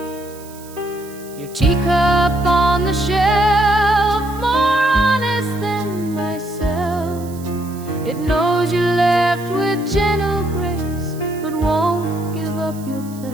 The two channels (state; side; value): noise; right; hiss, 20 dB below the sound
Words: Your teacup on the shelf, more honest than myself. It knows you left with gentle grace, but won't give up your